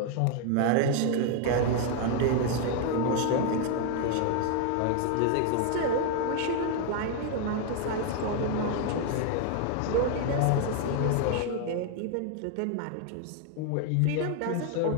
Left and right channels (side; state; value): both; different; correlation 0.00